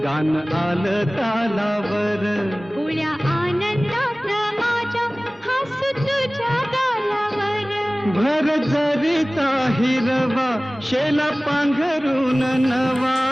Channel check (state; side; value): normal; both; correlation 0.98